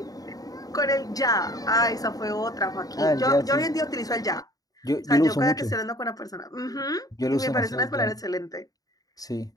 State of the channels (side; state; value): right; late; 0.18 ms